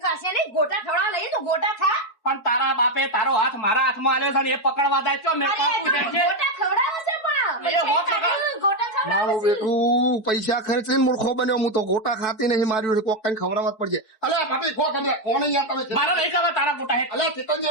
ખાશે નહીં ગોટા ખવડાવવા લઈએ તો ગોટા ખા. પણ તારા બાપે તારો હાથ મારા હાથમાં આલ્યો છે ને એ પકડવા જાય છો મેં અરે પાકું છે તમે ગોટા ખવડાવો છે પણ એ હોત લગા. ગોટા ખવડાવો મારું છે. બેટું પૈસા ખર્ચીને મૂર્ખો બન્યો હું તો ગોટા ખાતી નહીં માર્યું છે કોક કઈ ખવડાવવા જ પડશે અલ્યા ભાભી ખો તમે કોણ યાર તમે મારે નહીં ખાવા તારા ગોટા હે અલ્યા ચિકન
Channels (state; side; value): late; right; 4.6 ms